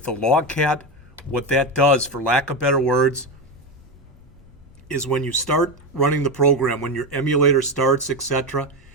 the log cat, what that does, for lack of better words, is when you start running the program, when your emulator starts, etc.,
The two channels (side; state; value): both; normal; correlation 0.15